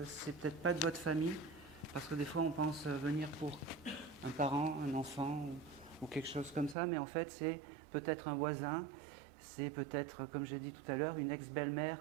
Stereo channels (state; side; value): drops out; left; at 6.8 s